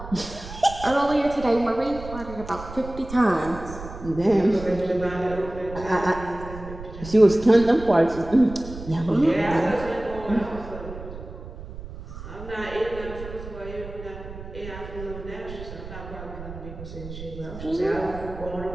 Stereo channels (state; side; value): noise; right; rumble, 12 dB below the sound